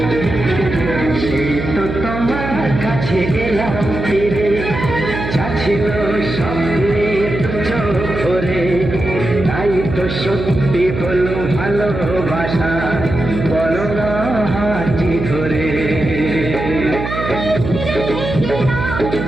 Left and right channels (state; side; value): noise; right; hum, 6 dB below the sound